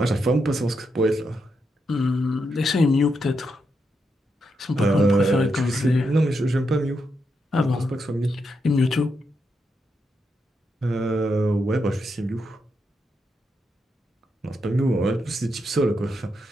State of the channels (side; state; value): both; normal; correlation 0.83